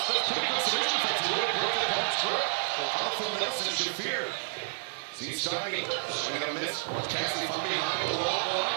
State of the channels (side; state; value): left; silent; digital silence